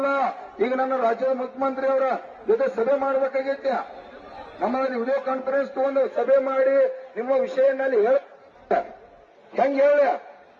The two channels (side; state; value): both; identical; correlation 1.00